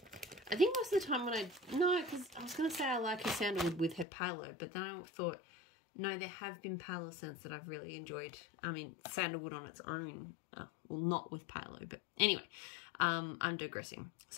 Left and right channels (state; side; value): drops out; right; at 4.0 s